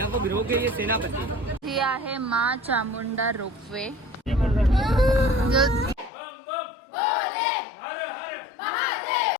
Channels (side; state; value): right; drops out; at 6.1 s